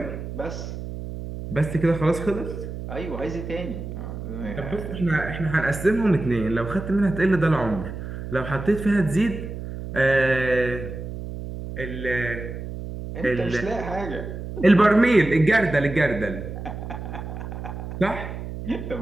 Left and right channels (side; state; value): right; noise; hum, 8 dB below the sound